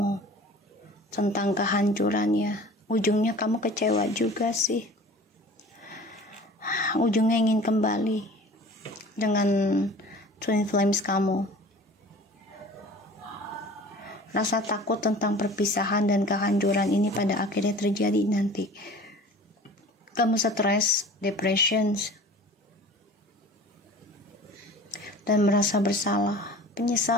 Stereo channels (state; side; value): normal; both; correlation 0.43